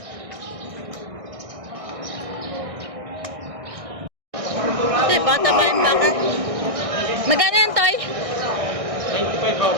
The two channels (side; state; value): left; late; 1.6 ms